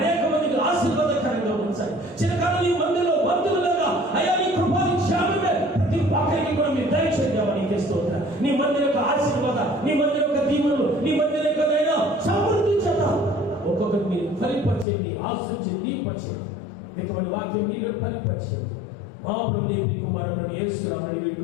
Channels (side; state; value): right; drops out; at 14.9 s